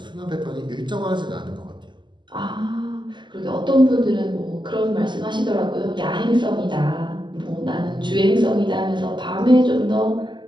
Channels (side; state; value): left; late; 0.22 ms